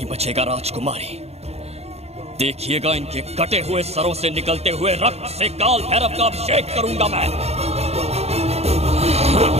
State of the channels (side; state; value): left; late; 0.30 ms